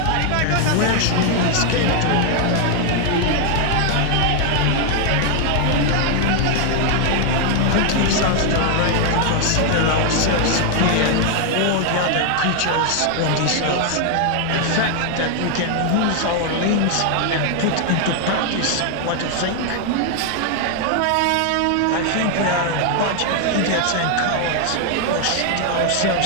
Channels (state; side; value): different; both; correlation 0.00